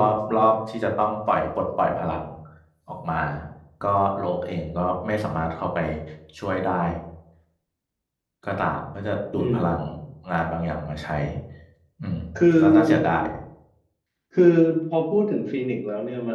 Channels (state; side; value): identical; both; correlation 1.00